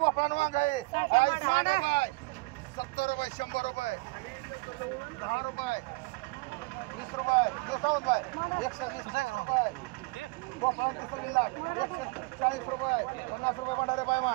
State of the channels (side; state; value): left; quieter; 26.4 dB